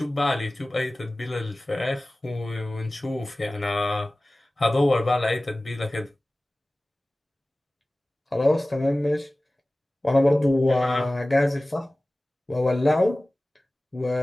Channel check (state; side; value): normal; both; correlation 0.98